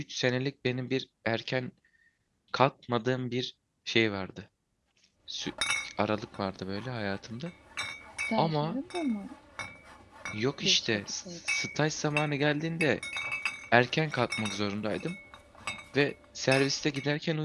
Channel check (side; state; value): both; identical; correlation 1.00